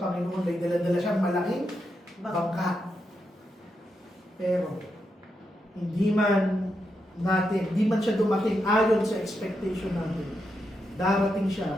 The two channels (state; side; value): normal; both; correlation 0.84